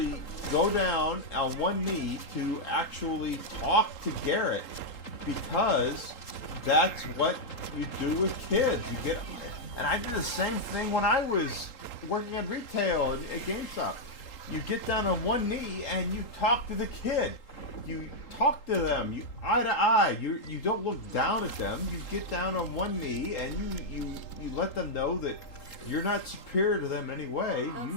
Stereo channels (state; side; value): late; right; 3.8 ms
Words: go down on one knee to actually talk to Garrett, because that's what you do with kids. You get, and I did the same thing when I was working at retail at GameStop. You get down on one knee and you talk to the kid. You talk to them, you eye to eye. You don't look down at them. You get down on one knee and you let them know that you're not superior to them in any way.